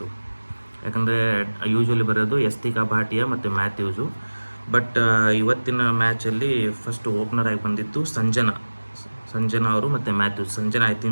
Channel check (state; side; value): inverted; both; correlation -1.00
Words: ಯಾಕಂದರೆ ಯೂಶ್ವಲಿ ಬರೋದು ಯಸ್ತಿಕಾ ಭಾಟಿಯಾ ಮತ್ತು ಮ್ಯಾಥ್ಯೂಸು. ಬಟ್ ಇವತ್ತಿನ ಮ್ಯಾಚಲ್ಲಿ ಫಸ್ಟ್ ಓಪನರ್ ಆಗಿ ಬಂದಿತ್ತು ಸಂಜನಾ ಅವರು ಮತ್ತು Mathews. Sanjana I